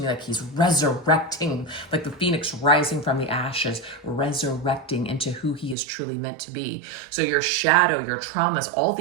me like he's resurrecting, like the phoenix rising from the ashes, resurrecting into who he is truly meant to be. So your shadow, your traumas, all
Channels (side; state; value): left; drops out; at 5.8 s